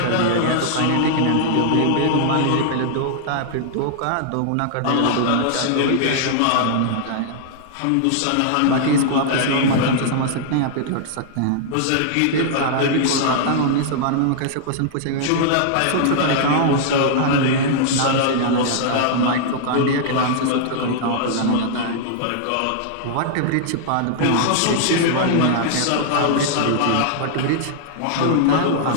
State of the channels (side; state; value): both; different; correlation -0.01